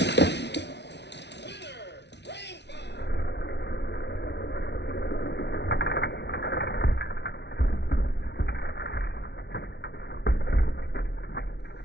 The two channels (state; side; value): late; right; 0.50 ms